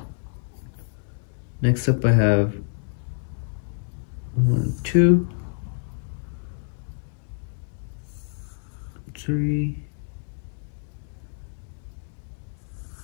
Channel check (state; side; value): silent; right; digital silence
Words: Next up, I have 1, 2, 3,